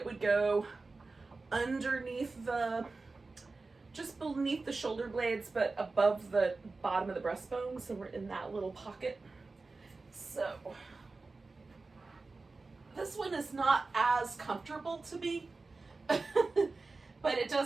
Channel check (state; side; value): quieter; left; 3.7 dB